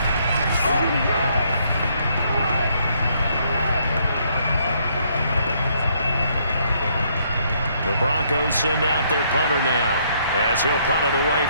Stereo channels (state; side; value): inverted; both; correlation -0.69